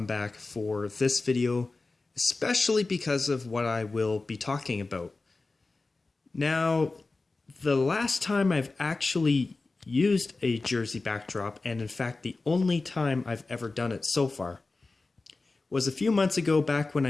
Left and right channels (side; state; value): right; quieter; 3.5 dB